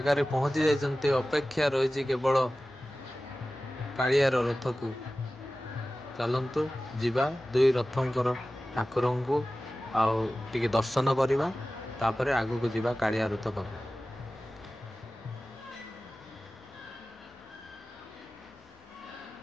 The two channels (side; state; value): both; normal; correlation 0.96